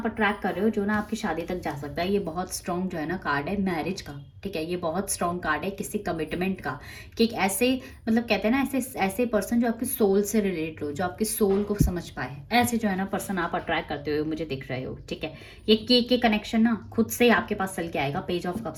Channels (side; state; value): both; identical; correlation 1.00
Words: अट्रैक्ट कर रहे हो जो ना आपकी शादी तक जा सकता है। ये बहुत स्ट्रॉन्ग जो है ना कार्ड है मैरिज का, ठीक है। ये बहुत स्ट्रॉन्ग कार्ड है किसी कमिटमेंट का, कि एक ऐसे मतलब कहते हैं ना ऐसे ऐसे पर्सन जो आपके सोल से रिलेटेड हो, जो आपके सोल को समझ पाए, ऐसे जो है ना पर्सन आप अट्रैक्ट करते हुए मुझे दिख रहे हो, ठीक है। ये के कनेक्शन ना खुद से आपके पास चल के आएगा। पेज ऑफ